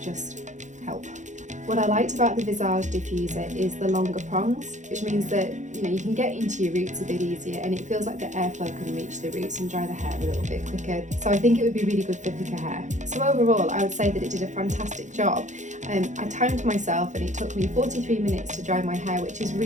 just help. What I liked about the Visage diffuser is the longer prongs, which means that you can get into your roots a bit easier, and it feels like the airflow can reach the roots and dry the hair a little bit quicker. So I think it would be really good for thicker hair. So overall, I would say that it did a fantastic job. I timed myself and it took me 43 minutes to dry my hair, which is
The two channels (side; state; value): left; late; 0.35 ms